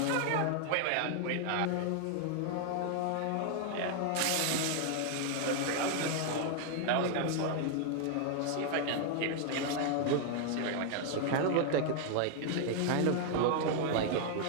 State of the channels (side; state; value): both; different; correlation 0.00